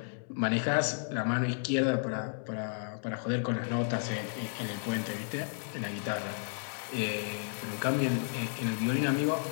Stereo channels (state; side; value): silent; right; 56 dB below the other